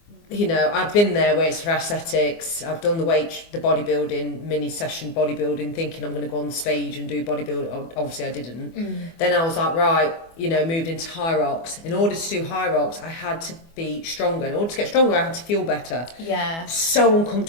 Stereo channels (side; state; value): right; late; 24 ms